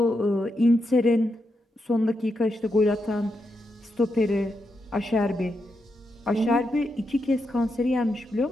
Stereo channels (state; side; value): normal; both; correlation 0.84